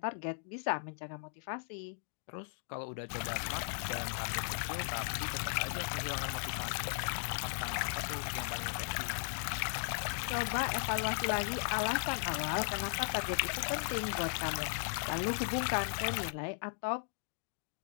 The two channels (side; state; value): right; silent; digital silence